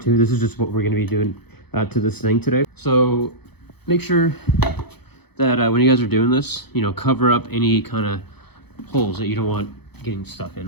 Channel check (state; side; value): late; right; 0.98 ms